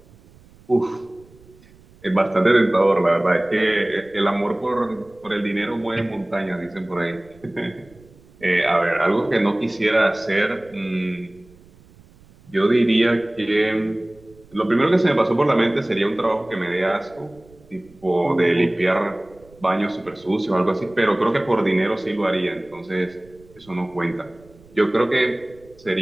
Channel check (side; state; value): right; noise; rumble, 26 dB below the sound